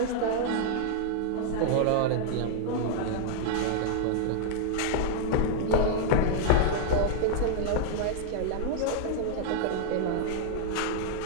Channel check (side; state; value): both; different; correlation -0.01